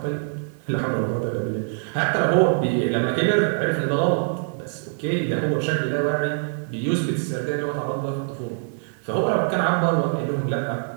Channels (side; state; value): left; silent; 63 dB below the other